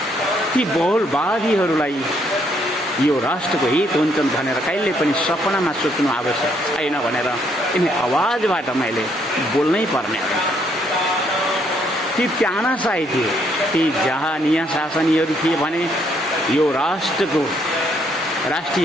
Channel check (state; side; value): normal; both; correlation 0.70